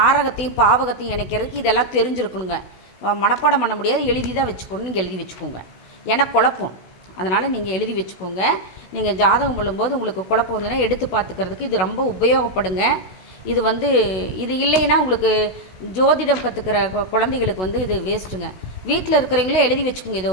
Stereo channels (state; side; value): late; right; 16 ms